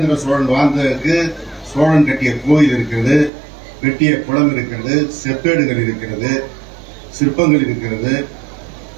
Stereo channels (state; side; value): drops out; left; at 3.3 s